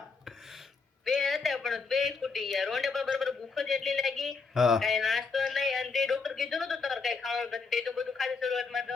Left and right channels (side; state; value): right; quieter; 4.7 dB